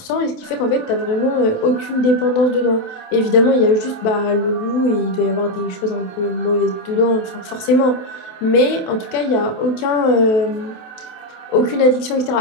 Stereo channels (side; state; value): right; late; 27 ms